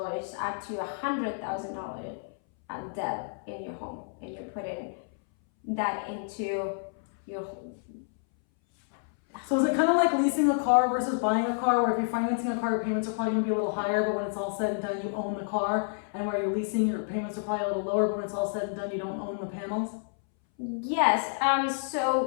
up to $100,000 debt in your home, and you're putting that into your home. So is it kind of like leasing a car versus buying a car, where if you're financing a car, your payments are probably going to be a little higher, but when it's all said and done, you own the car, and where you're leasing, your payments are probably a little lower, but when it's all said and done, you don't own the panels? Yes.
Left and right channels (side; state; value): right; silent; 58 dB below the other